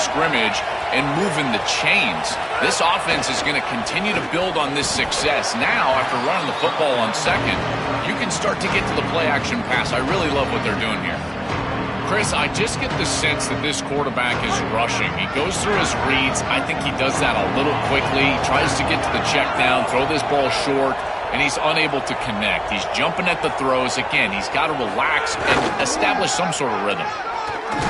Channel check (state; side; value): identical; both; correlation 1.00